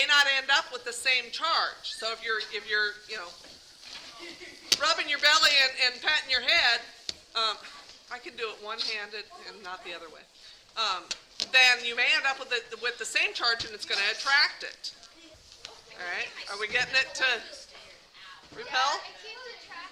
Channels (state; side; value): identical; both; correlation 1.00